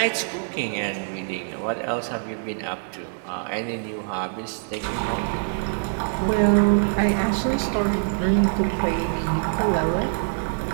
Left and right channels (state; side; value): silent; left; digital silence